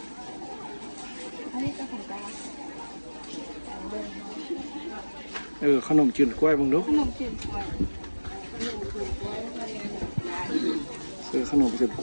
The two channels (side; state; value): both; inverted; correlation -1.00